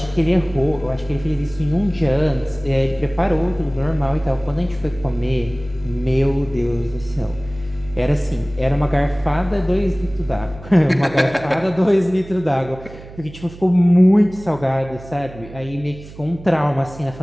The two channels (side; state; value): right; noise; hum, 17 dB below the sound